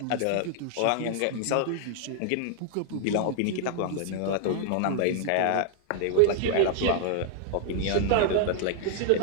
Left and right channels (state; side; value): different; both; correlation -0.01